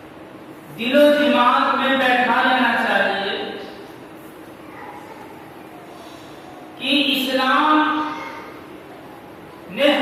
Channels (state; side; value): identical; both; correlation 1.00